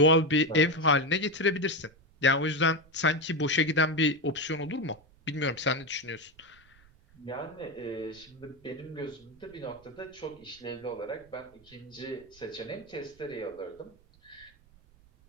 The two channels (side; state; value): right; noise; rumble, 28 dB below the sound